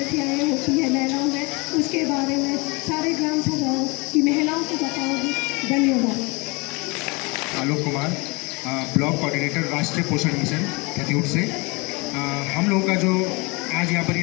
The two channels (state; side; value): quieter; right; 27.5 dB